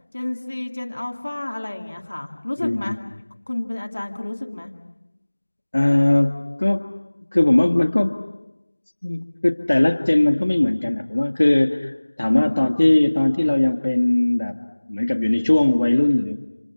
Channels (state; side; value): inverted; both; correlation -1.00